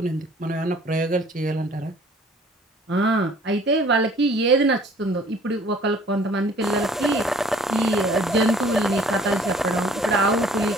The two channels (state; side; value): normal; both; correlation 0.54